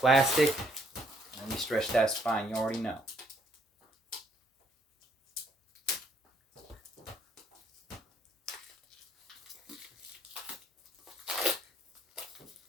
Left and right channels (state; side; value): normal; both; correlation 0.68